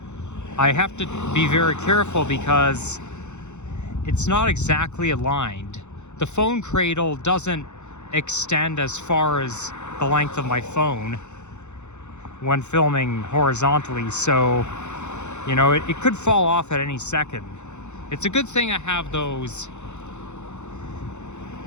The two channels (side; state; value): right; late; 0.83 ms